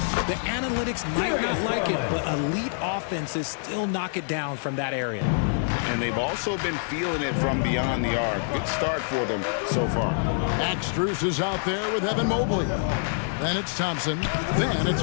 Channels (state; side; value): silent; right; digital silence